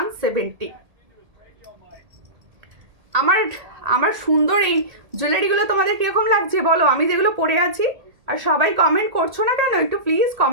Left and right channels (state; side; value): late; left; 1.8 ms